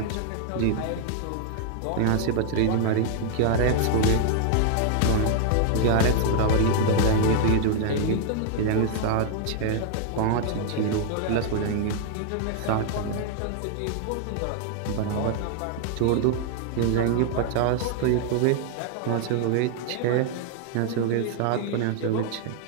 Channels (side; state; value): both; different; correlation 0.00